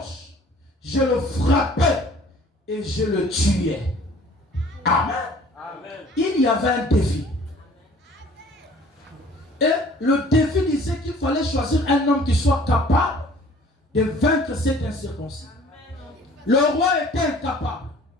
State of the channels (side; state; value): both; normal; correlation 0.52